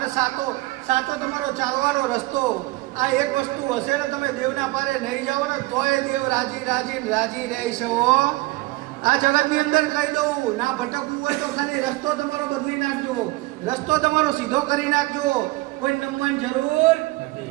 સાચો તમારો ચાલવાનો રસ્તો. આ એક વસ્તુ હશે ને તમે દેવના પારે નહીં જાઓ ને તોય દેવ રાજી રહેશે હો. આ જગતની અંદર કહી દઉં, ના ભટકવું હોય તો ખાલી રસ્તો તમારો બદલી નાખજો, રસ્તો તમારો સીધો કરી નાખજો. કોઈ નમવાની જરૂર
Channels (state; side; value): quieter; left; 20.9 dB